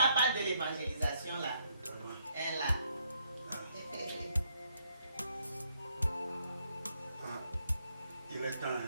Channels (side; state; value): both; inverted; correlation -0.73